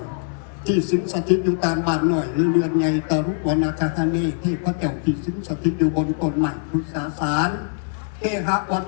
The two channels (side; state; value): right; silent; digital silence